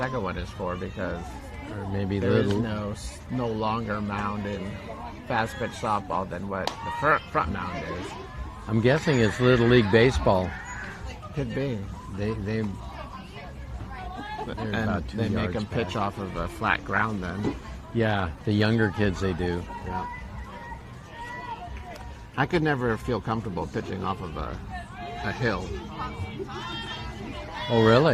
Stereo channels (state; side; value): identical; both; correlation 1.00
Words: one is for because or maybe there is little. no longer mound in fast pitch softball than what the front mound is. I'm guessing it's Little League baseball. Could be. They're And about 2 they make yards them pitch back. off of a flat ground then. Yeah, the younger kids they do. Yeah. I could never feel comfortable pitching off of a hill. Oh,